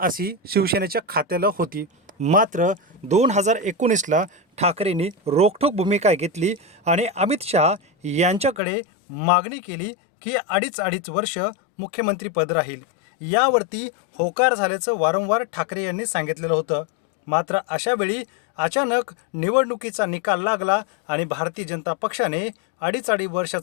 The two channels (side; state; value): right; drops out; at 8.6 s